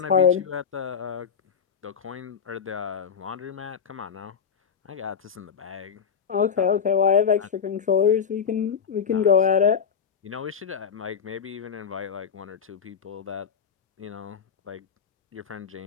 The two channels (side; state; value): right; quieter; 6.9 dB